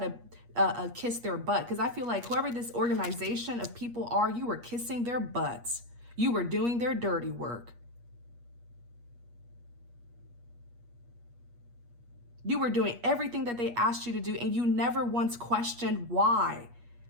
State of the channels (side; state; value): left; late; 8.4 ms